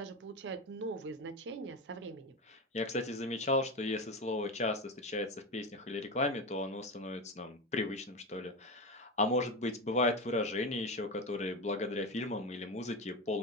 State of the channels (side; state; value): both; normal; correlation 0.20